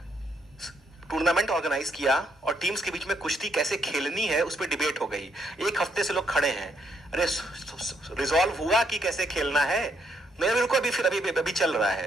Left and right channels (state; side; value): normal; both; correlation 0.74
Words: टूर्नामेंट ऑर्गेनाइज किया और टीम्स के बीच में कुश्ती कैसे खेलनी है उस पर डिबेट हो गई. 1 हफ्ते से लोग खड़े हैं, अरे रिजॉल्व हुआ कि कैसे खेलना है? नहीं, बिल्कुल अभी चल रहा